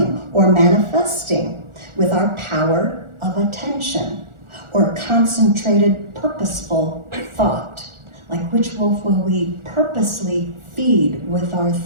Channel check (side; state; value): left; late; 1.4 ms